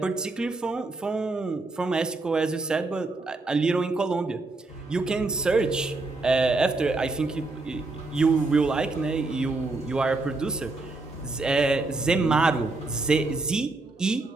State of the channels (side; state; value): left; quieter; 3.3 dB